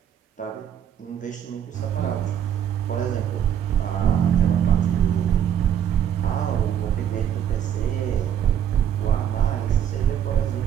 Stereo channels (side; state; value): left; quieter; 9.4 dB